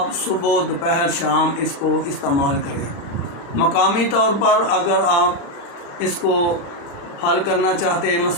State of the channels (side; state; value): right; late; 36 ms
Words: صبح دوپہر شام اس کو استعمال کریں۔ مقامی طور پر اگر آپ اس کو حل کرنا چاہتے ہیں